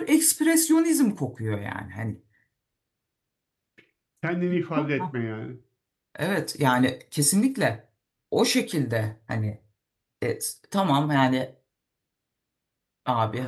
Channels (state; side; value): identical; both; correlation 1.00